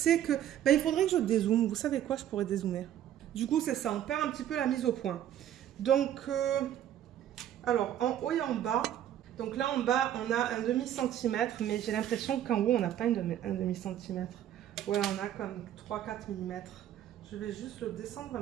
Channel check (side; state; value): left; quieter; 11.2 dB